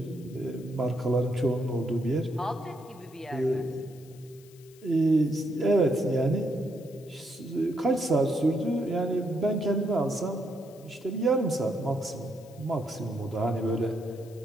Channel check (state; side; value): noise; left; hiss, 25 dB below the sound